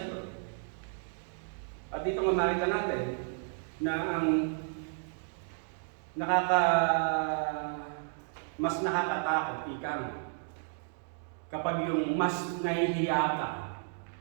At dito nga makita natin na ang mas nakakatakot, kapag yung mas nahihiya ka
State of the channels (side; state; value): left; silent; 56 dB below the other